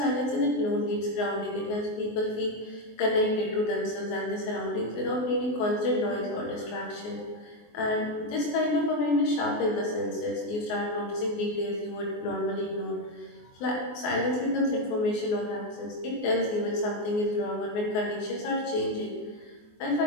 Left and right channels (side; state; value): right; late; 24 ms